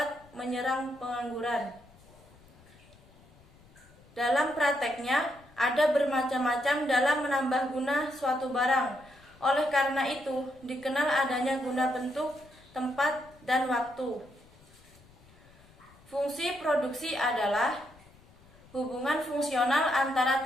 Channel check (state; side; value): noise; left; rumble, 26 dB below the sound